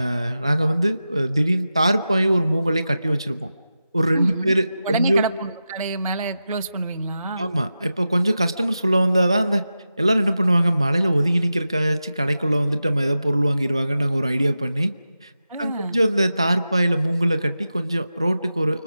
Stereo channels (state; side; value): inverted; both; correlation -0.92